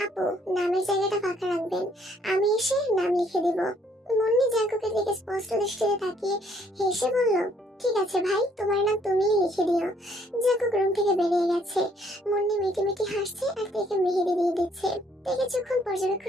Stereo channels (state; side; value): normal; both; correlation 0.65